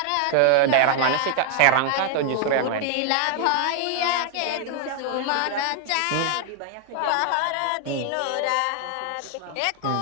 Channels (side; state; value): both; different; correlation 0.00